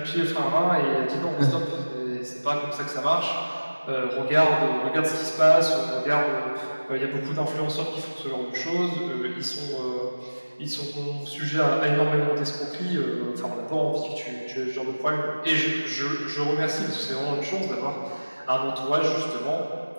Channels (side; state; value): both; inverted; correlation -1.00